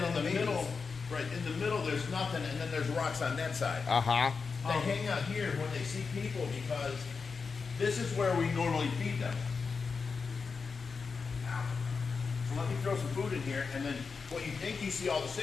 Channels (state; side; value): quieter; right; 5.0 dB